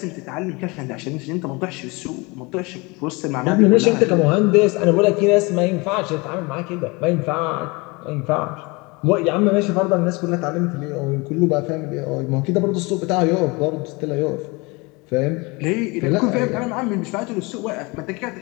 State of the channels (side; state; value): right; quieter; 26.3 dB